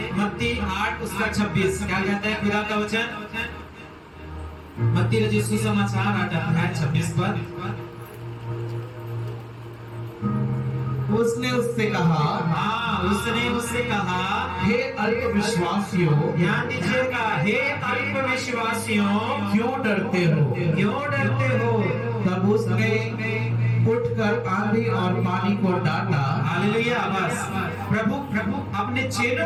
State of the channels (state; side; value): identical; both; correlation 1.00